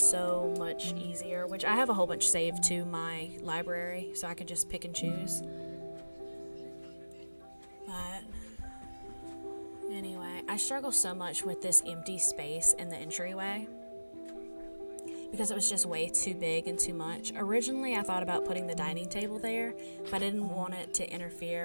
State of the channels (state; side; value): inverted; both; correlation -1.00